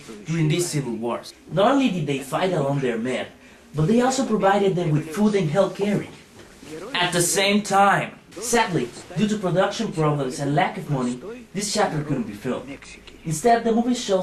during these civil wars. Not only did they fight along their men, but they also provided them with food and health caring. At the same time, sadly, due to production problems and lack of money, this chapter couldn't be filmed. Instead, the movie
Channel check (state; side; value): identical; both; correlation 1.00